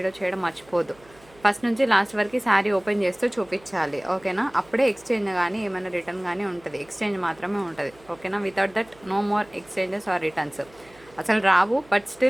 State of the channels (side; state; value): right; noise; hum, 27 dB below the sound